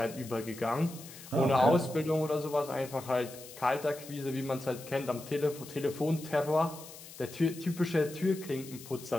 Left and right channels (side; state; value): left; noise; hiss, 16 dB below the sound